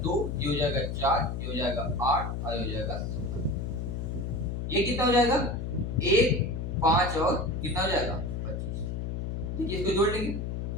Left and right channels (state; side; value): noise; left; hum, 3 dB below the sound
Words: 2, ये हो जाएगा 4, ये हो जाएगा 8 और ये हो जाएगा 16। ये कितना हो जाएगा 1 5 और कितना हो जाएगा 25। देखिए इसको जोड़ लेंगे,